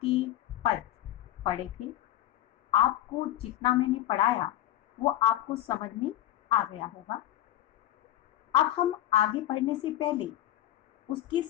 पद पढ़े थे। आपको जितना मैंने पढ़ाया वो आपको समझ में आ गया होगा। अब हम आगे पढ़ने से पहले उसके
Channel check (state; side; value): quieter; right; 13.4 dB